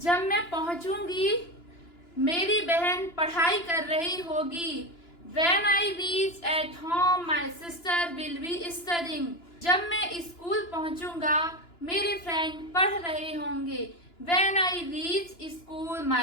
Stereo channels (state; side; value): late; right; 2.9 ms